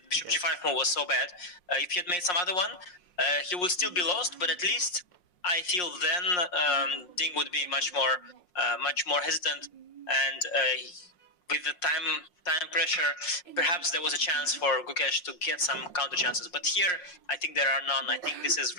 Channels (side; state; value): right; late; 5.6 ms